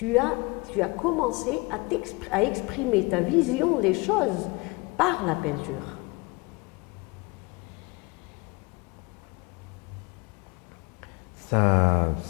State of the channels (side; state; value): right; quieter; 26.7 dB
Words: as commencé à exprimer ta vision des choses par la peinture? Ça,